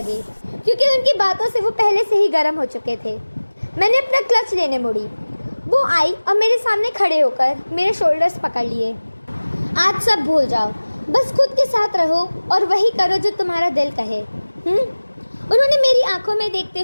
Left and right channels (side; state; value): both; inverted; correlation -1.00